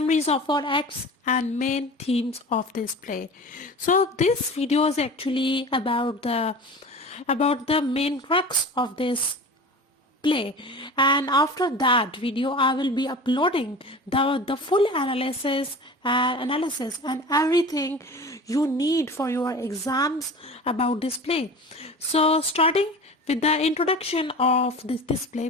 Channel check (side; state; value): both; normal; correlation 0.36